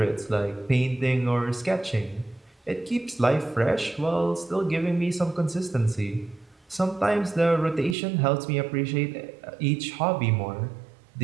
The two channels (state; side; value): drops out; left; at 8.0 s